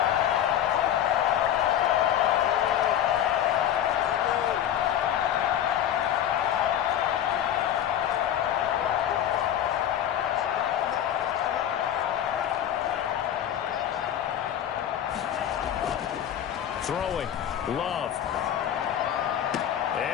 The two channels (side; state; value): right; quieter; 10.5 dB